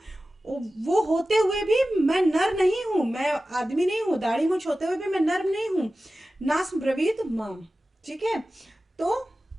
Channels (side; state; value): both; normal; correlation 0.95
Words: वो होते हुए भी मैं नर नहीं हूं, मैं आदमी नहीं हूं, दाढ़ी मूछ होते हुए भी मैं नर नहीं हूं। नास ब्रवीत माम, ठीक है। तो